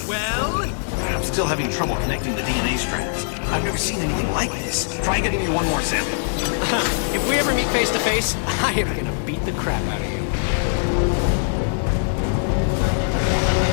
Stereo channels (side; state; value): right; silent; digital silence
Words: Still having trouble connecting the DNA strands. I've never seen anything like this. Try getting me one more sample. If we ever meet face to face, I am gonna beat the crap out of you.